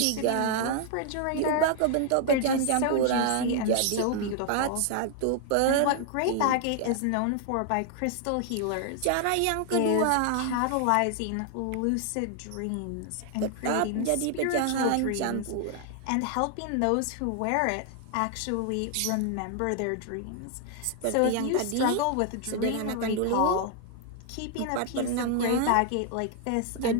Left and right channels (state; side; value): different; both; correlation 0.00